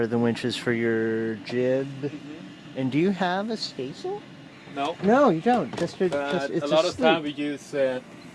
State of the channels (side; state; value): both; identical; correlation 1.00